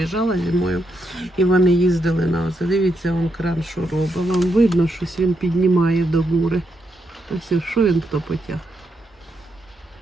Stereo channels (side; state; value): both; normal; correlation 0.81